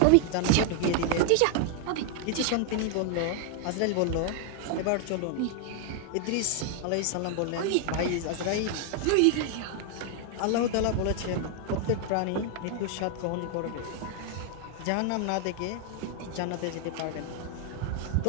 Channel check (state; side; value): different; both; correlation 0.00